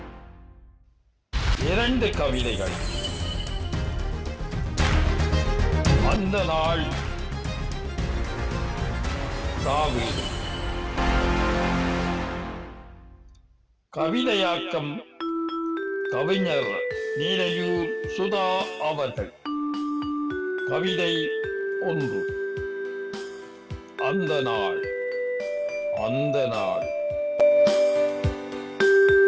இரண்டு கவிதைகள். அந்த நாள் சாவீடு. கவிதையாக்கம் கவிஞர் நீரையூர் சுதா அவர்கள். கவிதை 1. அந்த நாள். அந்த நாள்.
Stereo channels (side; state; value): both; identical; correlation 1.00